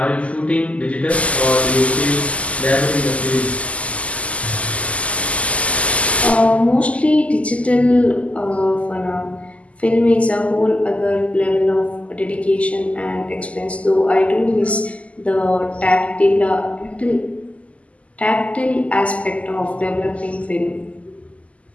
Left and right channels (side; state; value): right; late; 0.065 ms